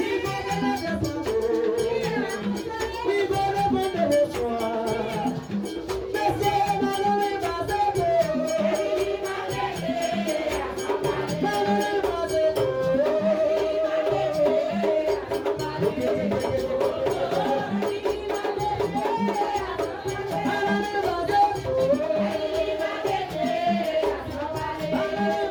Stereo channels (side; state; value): both; identical; correlation 1.00